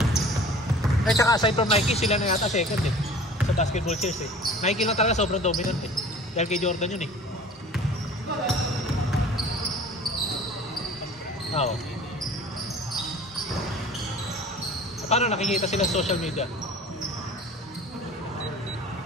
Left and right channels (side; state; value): both; normal; correlation 0.44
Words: At saka aside from Nike, sila na yata second eh. Sa basketball chairs eh. Nike lang talaga sobrang dominant eh. Dahil kay Jordan yun eh. Oo. Paano nakikita sila sa social media?